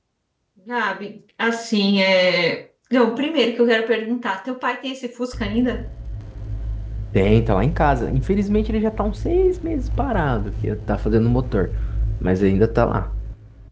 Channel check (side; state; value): both; identical; correlation 1.00